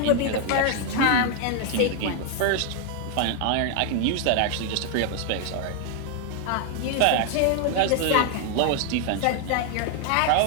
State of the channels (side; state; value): both; different; correlation 0.00